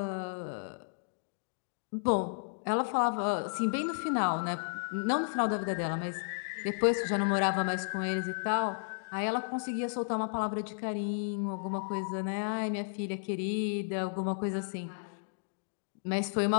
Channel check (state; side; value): silent; right; digital silence